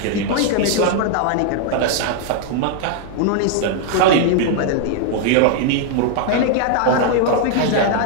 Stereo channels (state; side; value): different; both; correlation 0.00